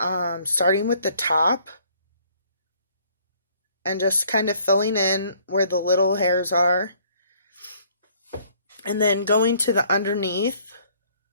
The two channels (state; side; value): inverted; both; correlation -0.61